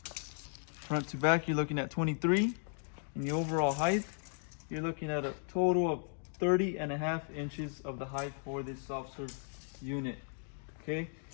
Front to back, you're looking at 23. And the overall height, you're looking at a total of 30.5 inches of the height for this soft serve unit. Okay,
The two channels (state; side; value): silent; right; 54 dB below the other